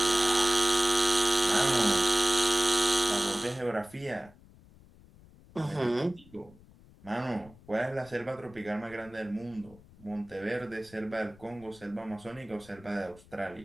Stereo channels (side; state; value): left; noise; rumble, 24 dB below the sound